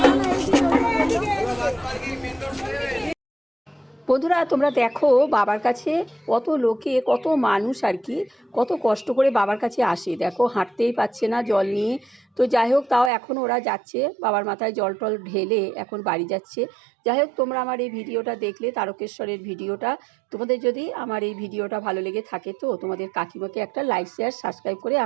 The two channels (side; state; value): left; drops out; at 13.1 s